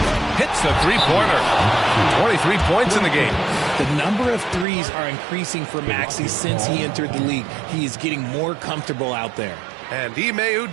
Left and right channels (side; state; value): left; drops out; at 4.7 s